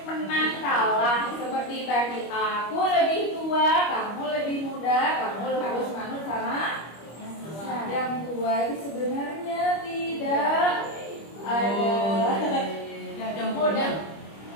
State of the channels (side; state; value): right; late; 25 ms